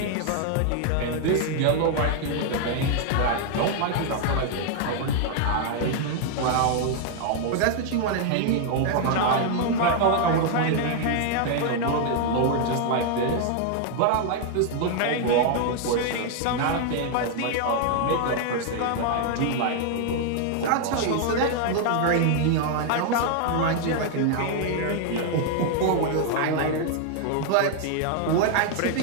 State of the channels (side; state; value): both; different; correlation 0.00